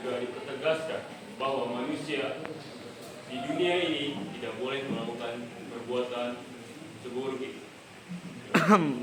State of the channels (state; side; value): identical; both; correlation 1.00